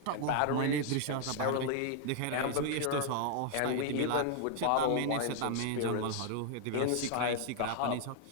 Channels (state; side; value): different; both; correlation 0.00